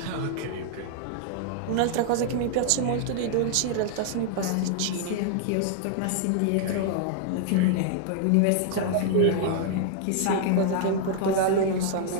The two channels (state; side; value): different; both; correlation -0.01